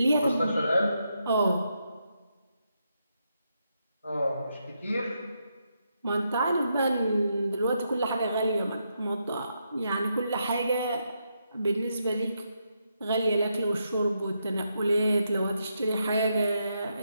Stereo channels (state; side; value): inverted; both; correlation -0.81